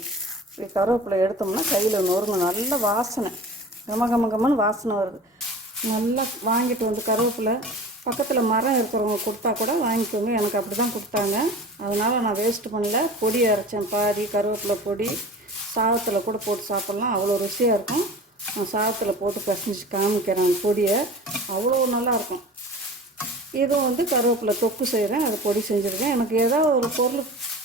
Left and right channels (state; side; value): normal; both; correlation 0.38